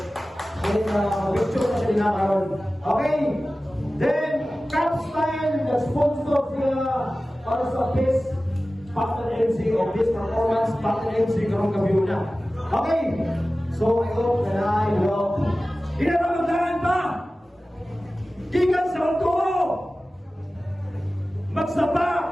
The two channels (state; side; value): normal; both; correlation 0.96